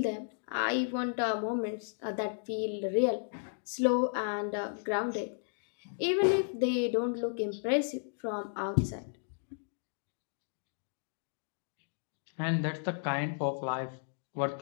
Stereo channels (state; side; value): silent; right; digital silence